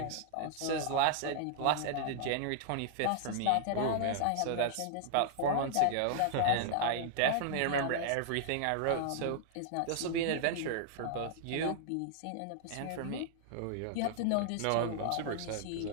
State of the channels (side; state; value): both; different; correlation -0.01